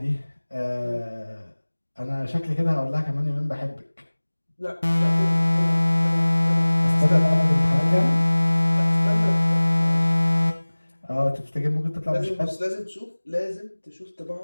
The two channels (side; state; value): both; inverted; correlation -1.00